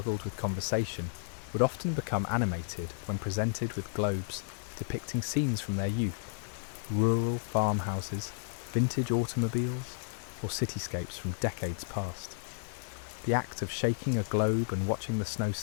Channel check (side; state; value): right; silent; digital silence